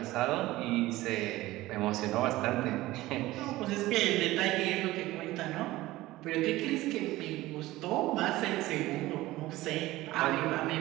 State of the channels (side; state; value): left; quieter; 17.6 dB